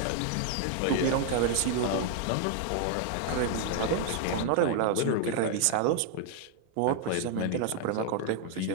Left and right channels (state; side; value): different; both; correlation 0.00